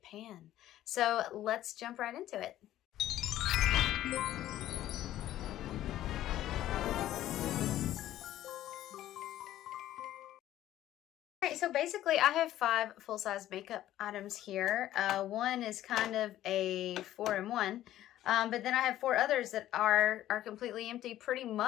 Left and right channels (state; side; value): quieter; right; 13.3 dB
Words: pan. So let's jump right into it. All right, so basically I have 5 full-size makeup items here. One is kind of a 4-in-1. But then I have 4 others that are completely empty, pretty